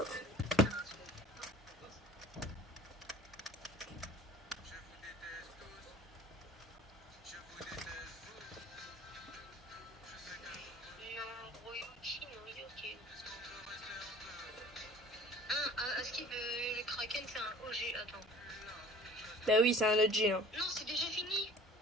Le Kraken c'est un OG, attends. Bah oui, c'est un OG. Hein. Non, c'est déjà fini.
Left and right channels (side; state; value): both; normal; correlation 0.46